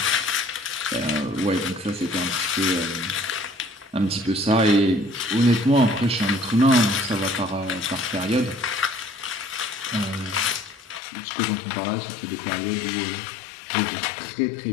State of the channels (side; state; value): right; drops out; at 11.0 s